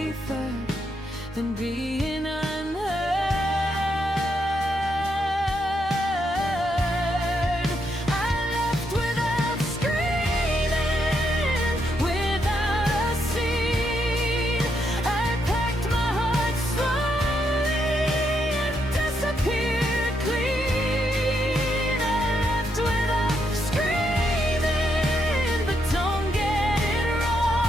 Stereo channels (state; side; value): normal; both; correlation 0.78